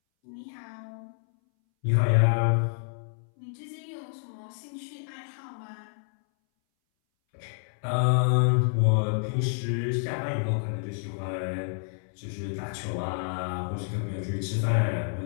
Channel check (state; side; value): silent; right; 59 dB below the other